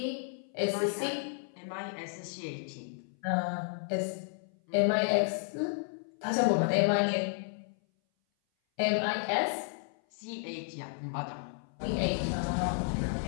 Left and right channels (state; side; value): silent; right; 56 dB below the other